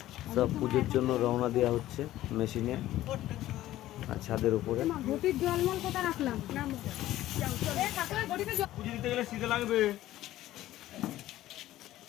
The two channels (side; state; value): right; quieter; 14.6 dB